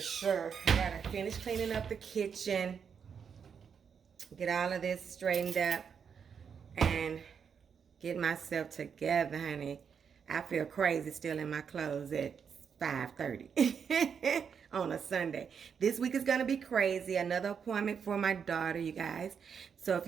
sure. I gotta finish cleaning up the kitchen, get all of this straightened up, and get myself together, honey. I feel crazy still in my clothes at 5:30 on a Sunday. This week is going to be crazy. Another appointment for my daughter, you guys. So if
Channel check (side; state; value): left; quieter; 6.9 dB